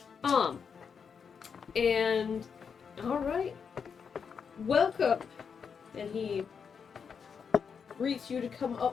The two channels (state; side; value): quieter; right; 6.4 dB